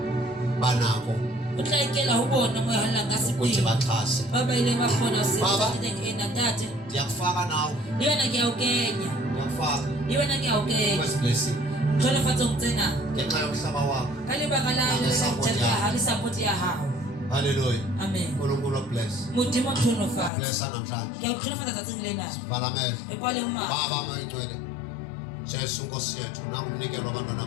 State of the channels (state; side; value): drops out; right; at 20.3 s